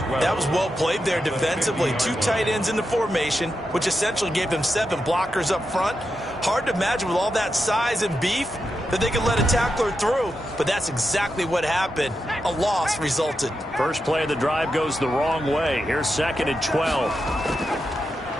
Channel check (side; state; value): both; normal; correlation 0.87